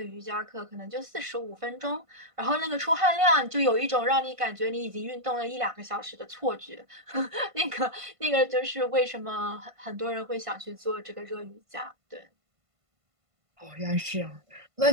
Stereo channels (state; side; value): late; left; 1.5 ms